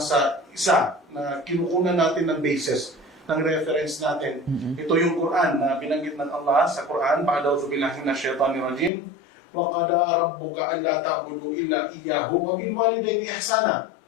isa na kinukunan natin ng basis, ng reference natin. Ito yung Quran na binanggit ng Allah sa Quran, "Ba'da'udzu billahi minasyaitonir rajim, wa qada rabbuka alla ta'budu illa iyyahu wa bil walidayni ihsana."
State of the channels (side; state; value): right; drops out; at 8.9 s